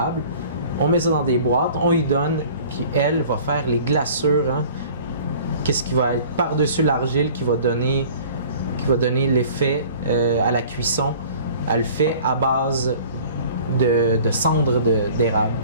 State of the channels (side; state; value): both; inverted; correlation -0.48